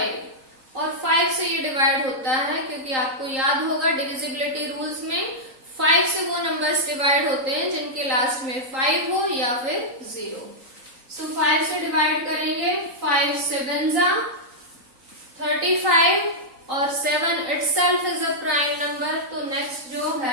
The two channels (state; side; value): late; left; 3.8 ms